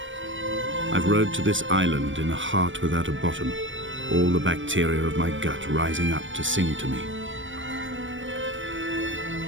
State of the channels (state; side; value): late; left; 0.56 ms